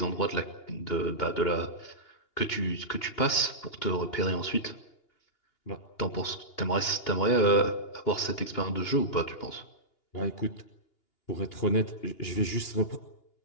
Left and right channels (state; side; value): late; right; 2.8 ms